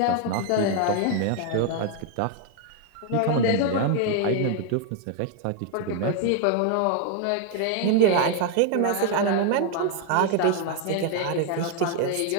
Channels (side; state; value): both; different; correlation 0.00